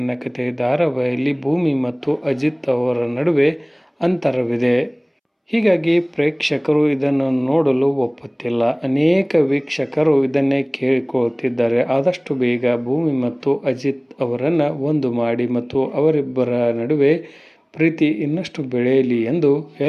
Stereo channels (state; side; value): identical; both; correlation 1.00